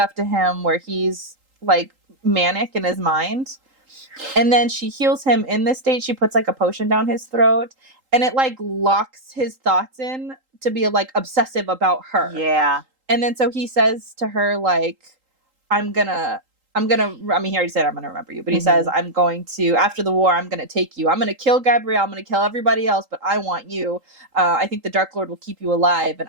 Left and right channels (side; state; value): left; late; 3.8 ms